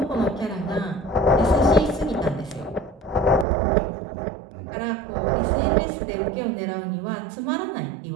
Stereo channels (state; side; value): drops out; left; at 3.5 s